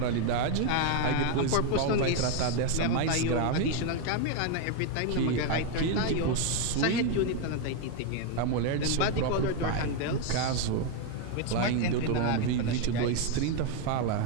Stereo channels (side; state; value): both; different; correlation 0.01